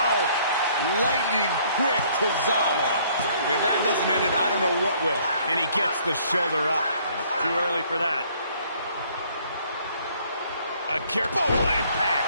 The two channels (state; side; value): inverted; both; correlation -0.61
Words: Lightning quick Tozawa. If that doesn't end it, I don't know what will. And he gets the shoulder up. Too early for that. Akira, oh, what impact.